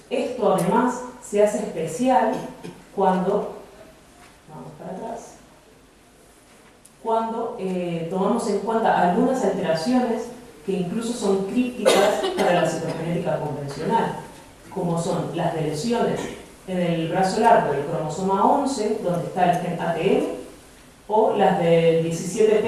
esto además se hace especial cuando, vamos para atrás, cuando tomamos en cuenta algunas alteraciones que incluso son críticas para la citogenética convencional, como son las deleciones en el brazo largo del cromosoma 11, donde está el gen ATM, o las del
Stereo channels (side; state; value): both; identical; correlation 1.00